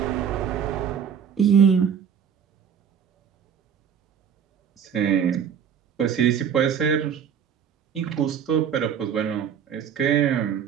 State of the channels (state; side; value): quieter; left; 7.9 dB